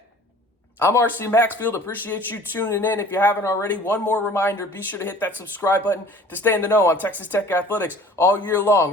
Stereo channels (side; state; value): both; normal; correlation 0.48